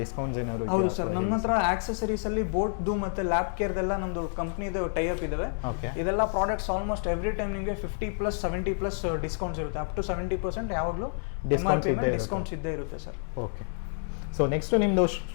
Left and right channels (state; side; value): silent; right; digital silence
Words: ಡಿಸ್ಕೌಂಟ್ಸ್ ಏನಾದ್ರು? ಹೌದು ಸರ್, ನಮ್ಮ ಹತ್ರ ಆಕ್ಸೆಸರೀಸ್ ಅಲ್ಲಿ ಬೋಟ್ದು ಮತ್ತೆ ಲ್ಯಾಪ್ ಕೇರ್ದೆಲ್ಲ ನಮ್ದು ಕಂಪ್ನಿದು ಟೈ ಅಪ್ ಇದಾವೆ. ಇದೆಲ್ಲ ಪ್ರಾಡಕ್ಟ್ಸ್ ಆಲ್ಮೋಸ್ಟ್ ಎವ್ರಿ ಟೈಮ್ ನಿಮಗೆ 50+ 70+ ಡಿಸ್ಕೌಂಟ್ಸ್ ಇರುತ್ತೆ. ಅಪ್ ಟು 70% ಯಾವಾಗಲೂ ಡಿಸ್ಕೌಂಟ್ಸ್ ಇದ್ದೇ ಇರುತ್ತೆ ಸರ್. ಓಕೆ, ಸೊ ನೆಕ್ಸ್ಟ್ ನಿಮ್ದು